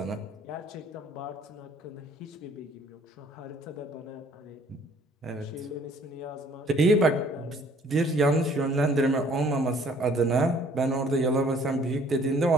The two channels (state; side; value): normal; both; correlation 0.58